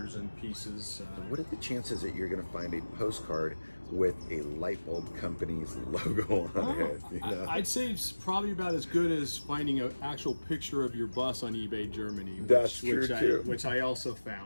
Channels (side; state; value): both; inverted; correlation -1.00